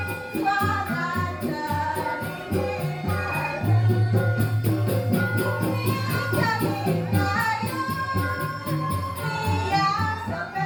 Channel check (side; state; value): both; identical; correlation 1.00